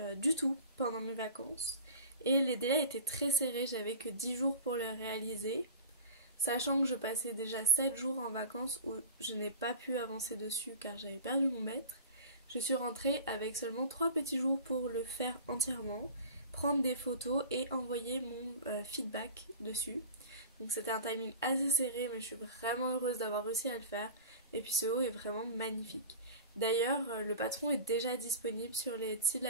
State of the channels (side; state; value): both; inverted; correlation -0.37